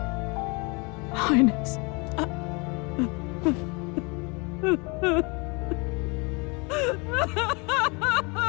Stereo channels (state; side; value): quieter; right; 30.0 dB